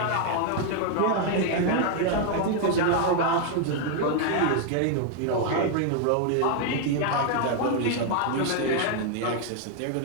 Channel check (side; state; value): both; different; correlation 0.00